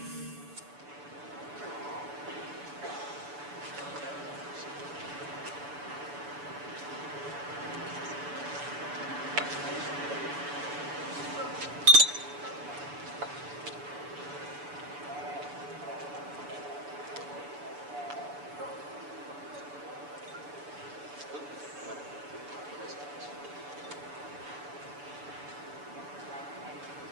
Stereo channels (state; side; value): late; left; 6.9 ms